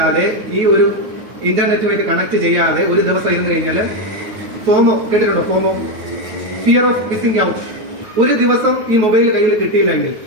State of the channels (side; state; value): left; late; 9.4 ms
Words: ഈ ഒരു ഇന്റർനെറ്റുമായിട്ട് കണക്ട് ചെയ്യാതെ ഒരു ദിവസം ഇരുന്ന് കഴിഞ്ഞാൽ ഫോമോ കേട്ടിട്ടുണ്ടോ? ഫോമോ, ഫിയർ ഓഫ് മിസ്സിംഗ് ഔട്ട്. ഒരു ദിവസം ഈ മൊബൈൽ കയ്യിൽ കിട്ടിയില്ല എങ്കിൽ,